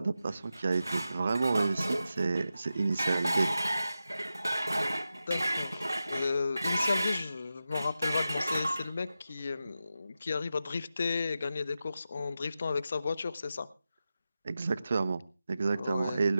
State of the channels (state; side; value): inverted; both; correlation -0.91